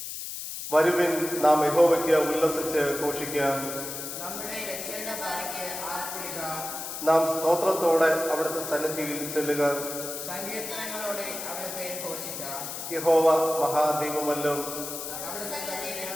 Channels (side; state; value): left; noise; hiss, 7 dB below the sound